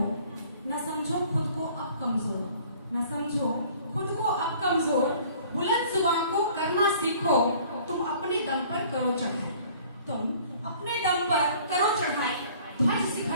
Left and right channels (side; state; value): both; inverted; correlation -0.53